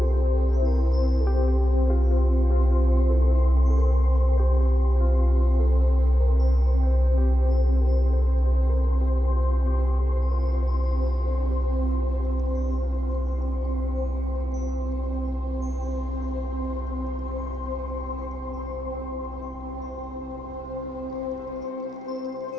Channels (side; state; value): both; normal; correlation 0.91